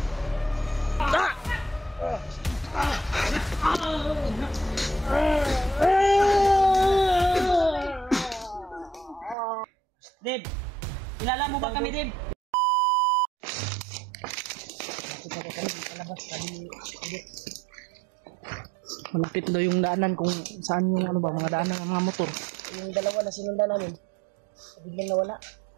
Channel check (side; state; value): left; drops out; at 9.3 s